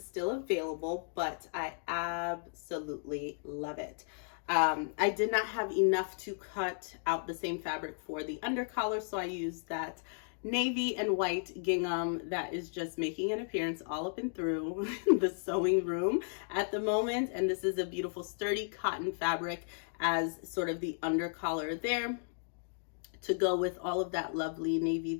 still available, but I absolutely love it. I did not have enough to cut out the same fabric for the undercollar, so I used that navy and white gingham that is just making an appearance all up and through the sewing room at the moment. And this is a beautiful sturdy cotton fabric as sort of the undercollar there to go with all of that lovely navy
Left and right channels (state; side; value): silent; right; digital silence